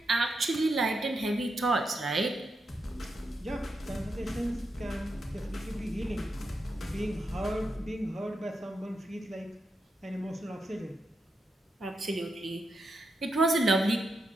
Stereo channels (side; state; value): both; normal; correlation 0.84